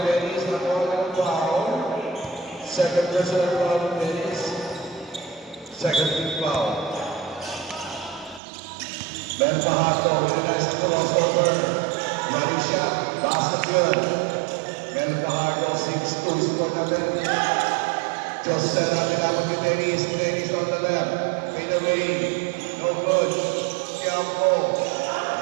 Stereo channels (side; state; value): left; drops out; at 8.4 s